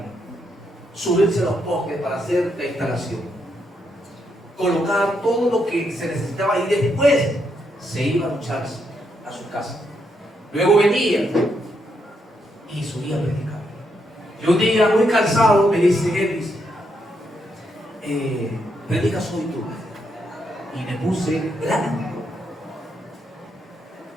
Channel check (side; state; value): both; normal; correlation 0.79